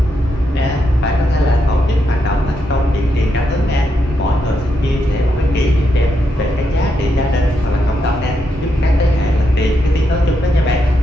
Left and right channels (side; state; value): both; normal; correlation 0.81